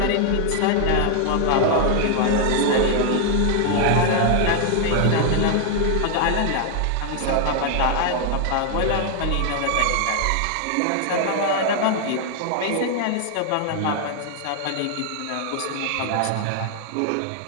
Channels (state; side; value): different; both; correlation 0.00